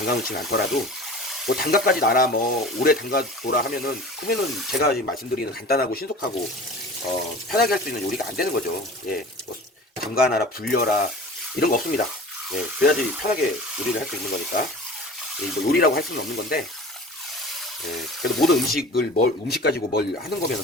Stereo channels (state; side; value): normal; both; correlation 0.39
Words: 놓지는 않더라도 뭐 담가까지 놔라 뭐 오래 담가 둬라 그러면은 제가 지금 말씀드리는 간단하고 신속하고 편하게 할 수 있는 요리가 안 되는 거죠. 예, 뭐 담가 놔라 불려라 이런 거 없습니다. 예, 그래야지 편하게 요리를 할 수 있는 거니까 뭐 요리라고 할 수는 없는 건데 예, 그래도 모든 음식 가지고 뭘 하는